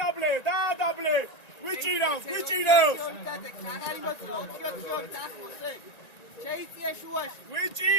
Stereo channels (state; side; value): late; right; 1.9 ms